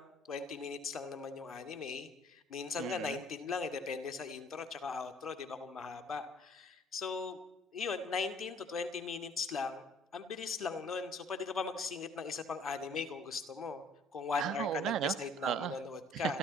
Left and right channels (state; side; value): normal; both; correlation 0.56